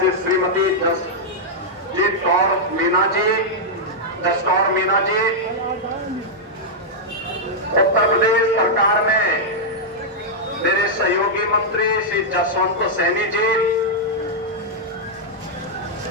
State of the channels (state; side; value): normal; both; correlation -0.06